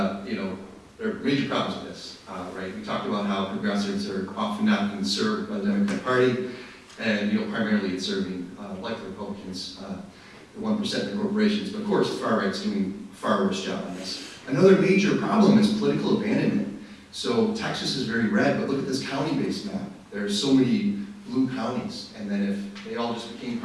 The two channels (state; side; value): identical; both; correlation 1.00